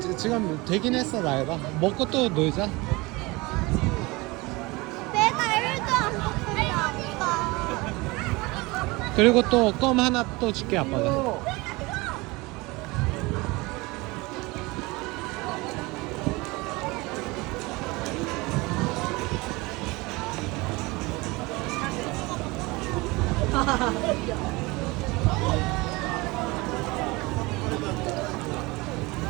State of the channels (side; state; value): left; quieter; 23.6 dB